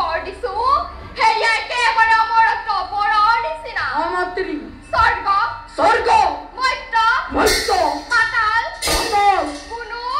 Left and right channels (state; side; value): identical; both; correlation 1.00